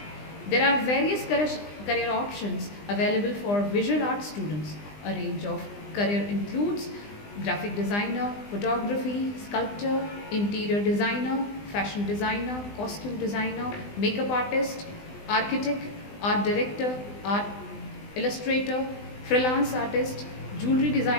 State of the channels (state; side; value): late; right; 20 ms